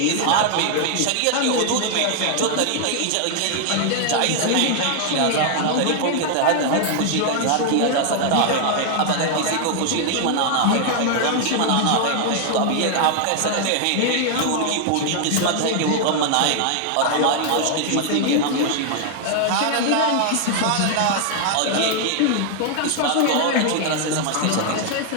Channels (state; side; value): different; both; correlation 0.00